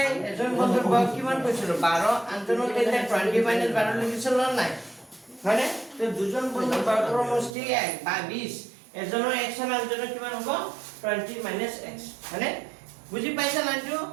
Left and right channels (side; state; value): left; drops out; at 7.5 s